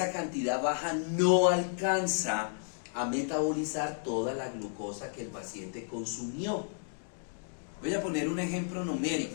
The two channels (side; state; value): right; silent; digital silence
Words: cantidad baja no alcanza a metabolizar toda la glucosa que el paciente consumió. Voy a poner un ejemplo numérico.